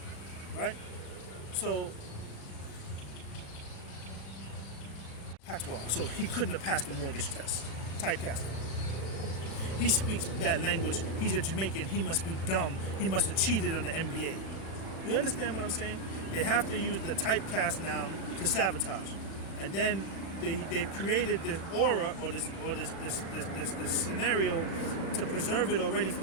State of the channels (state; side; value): late; right; 35 ms